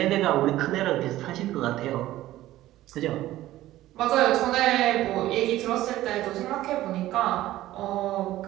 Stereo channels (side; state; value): left; quieter; 15.1 dB